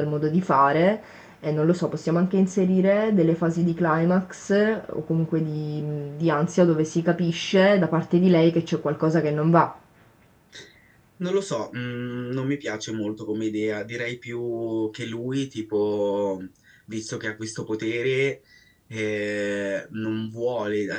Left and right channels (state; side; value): identical; both; correlation 1.00